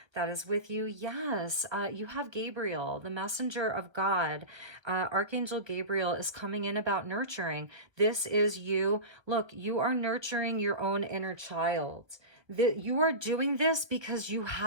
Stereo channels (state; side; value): late; left; 1.1 ms